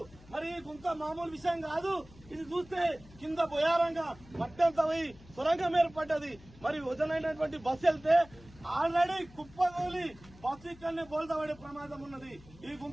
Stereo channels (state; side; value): noise; left; hum, 22 dB below the sound